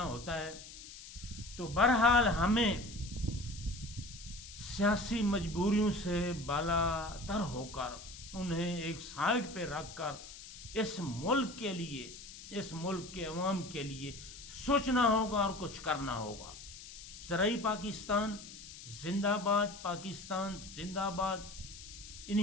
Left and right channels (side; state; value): left; noise; hiss, 14 dB below the sound